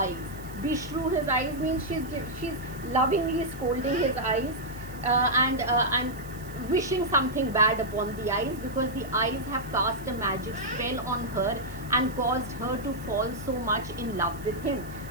Beshrew his eyes means she's lovingly scolding his eyes and wishing something bad upon the eyes, because the eyes have cast a magic spell on her and caused her to fall so much in love with him.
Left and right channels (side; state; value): right; noise; hiss, 21 dB below the sound